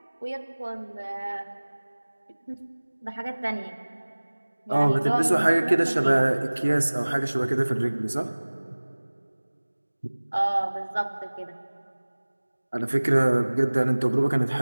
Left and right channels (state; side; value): inverted; both; correlation -1.00